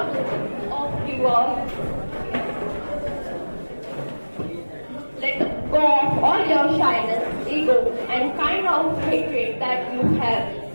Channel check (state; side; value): inverted; both; correlation -1.00